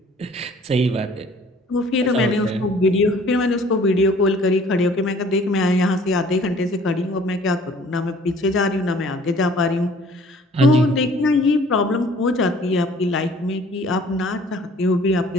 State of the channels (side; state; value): both; normal; correlation 0.54